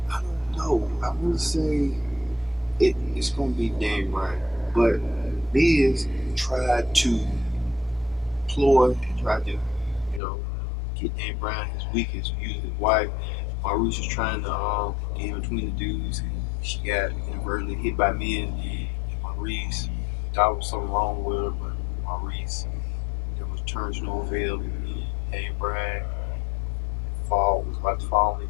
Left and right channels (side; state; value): right; drops out; at 10.2 s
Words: don't know. I want to say it's going to be Daniel Bryan, but Miz tried to ploy and tried to, get Daniel Bryan his weakest, using his wife. Maurice was trying to get in between the dudes, and she got inadvertently hit by Miz. And Maurice thought there was something wrong with her, but Maurice, there was turns no avail. Daniel Bryan was about to fall in